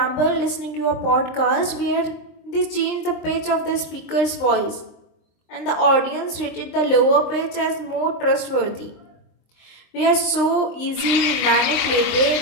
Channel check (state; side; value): late; right; 23 ms